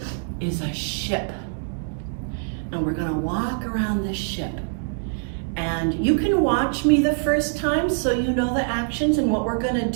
is a ship. And we're going to walk around the ship. And you can watch me the first time so you know the actions and what we're going to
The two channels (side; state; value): left; silent; digital silence